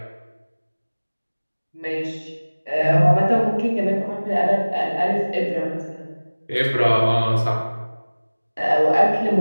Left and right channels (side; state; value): both; inverted; correlation -1.00